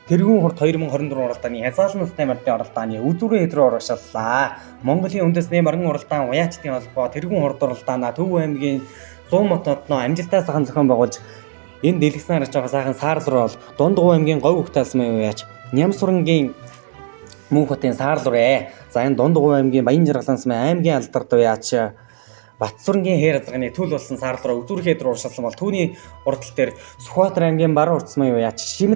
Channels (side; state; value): left; silent; digital silence